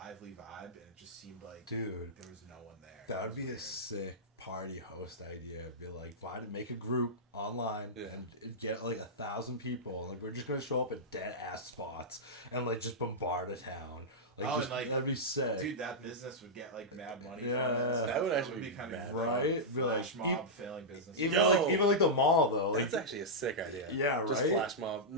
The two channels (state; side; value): normal; both; correlation -0.09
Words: vibe, and it just seemed like Dude, there was no one there. that It would was be a weird. sick party host idea. Be like, make a group online Yeah. and get like 1,000 people. Like, we're just gonna show up at dead ass spots and like just bombard a town. Like, Oh, just, and, like, that'd be sick. Dude, that business would get like mad money. Yeah, from it. that would actually It be kind mad, of right? Be like, flash mob failing business. Even Yo. like the mall though. Like, That's actually a sick idea. Yeah, Just right? flash mob.